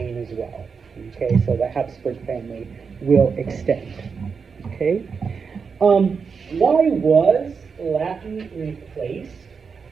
as well. Okay, so the Habsburg family will extend. Okay? Why was Latin replaced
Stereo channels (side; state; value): left; quieter; 5.6 dB